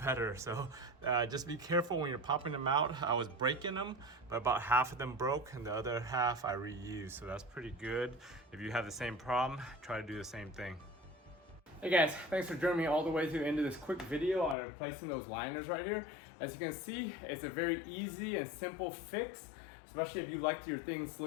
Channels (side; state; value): right; drops out; at 14.6 s